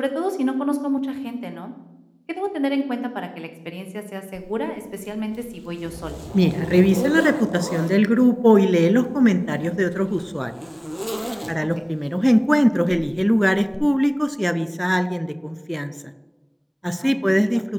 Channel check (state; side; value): identical; both; correlation 1.00